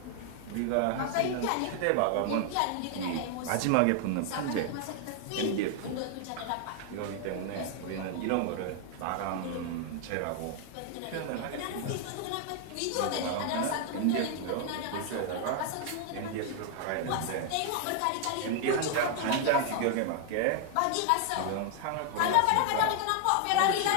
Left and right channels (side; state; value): both; different; correlation 0.00